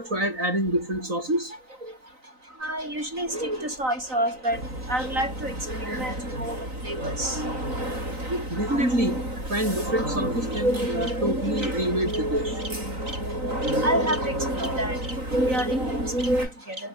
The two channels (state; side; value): late; left; 3.9 ms